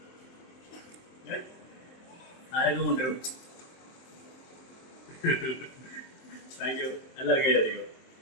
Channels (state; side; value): late; right; 23 ms